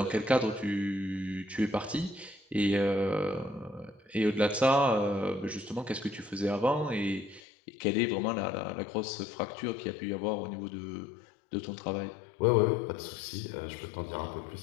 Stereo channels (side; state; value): right; drops out; at 7.4 s